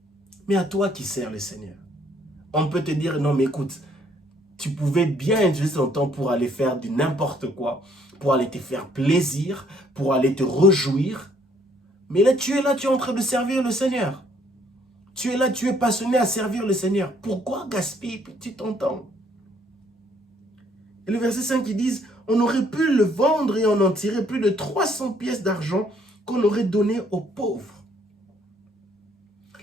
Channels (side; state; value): both; normal; correlation 0.65